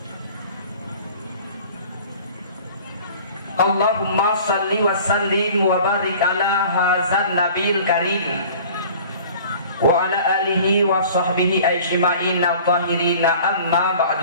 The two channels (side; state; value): both; inverted; correlation -0.46